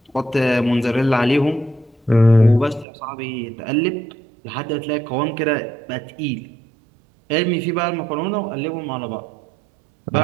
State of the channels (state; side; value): drops out; left; at 2.9 s